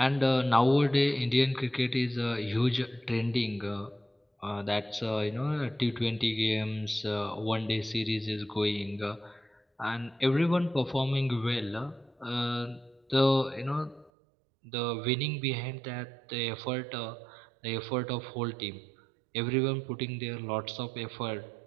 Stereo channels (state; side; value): drops out; left; at 14.1 s